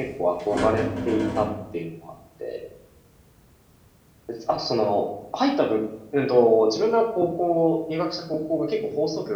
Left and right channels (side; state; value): both; identical; correlation 1.00